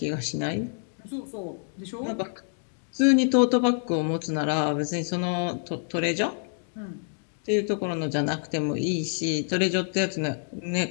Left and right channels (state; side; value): silent; right; digital silence